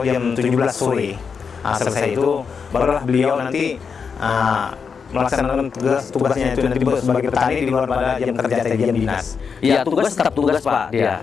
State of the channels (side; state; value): right; quieter; 6.0 dB